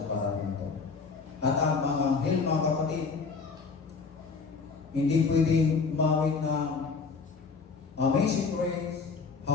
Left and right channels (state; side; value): quieter; right; 4.9 dB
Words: para nito. At ang mga anghel, mga kapatid, hindi pwedeng umawit ng Amazing Grace,